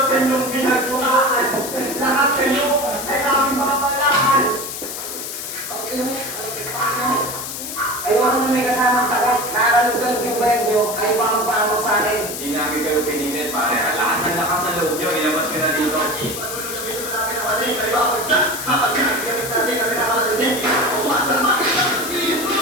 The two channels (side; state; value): left; noise; hiss, 7 dB below the sound